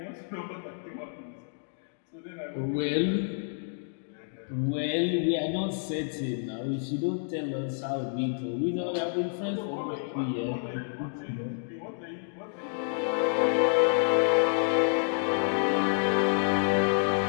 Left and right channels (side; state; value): right; silent; digital silence